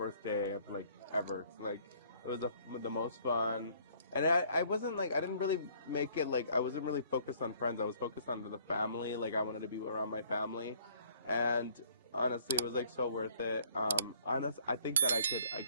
of ever. It was the most fun. And I wasn't I didn't really make it I wasn't really focused on friends. I was focused on the family. I wanted to be around my family. And honestly, it was so worth it. I think that I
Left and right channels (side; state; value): both; inverted; correlation -0.59